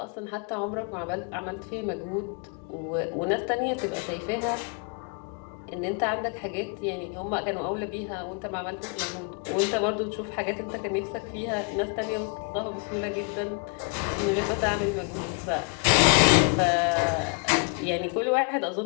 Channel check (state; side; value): quieter; right; 35.5 dB